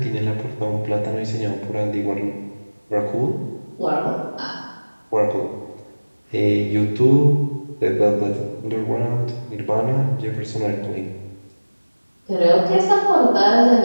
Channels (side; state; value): both; inverted; correlation -1.00